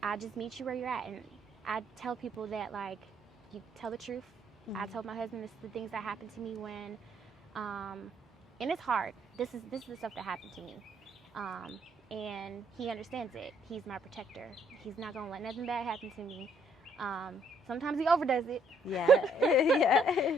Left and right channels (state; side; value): normal; both; correlation 0.67